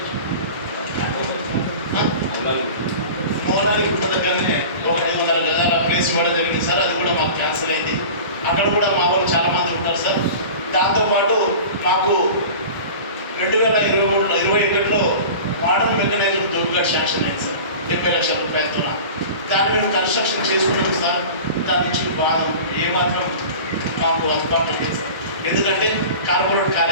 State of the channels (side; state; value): both; inverted; correlation -0.36